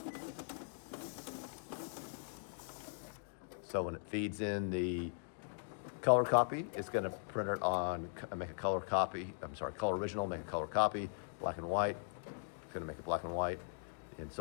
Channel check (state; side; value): silent; right; digital silence